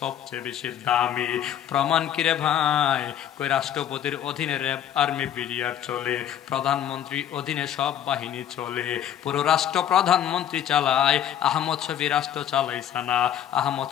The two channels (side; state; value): right; quieter; 10.4 dB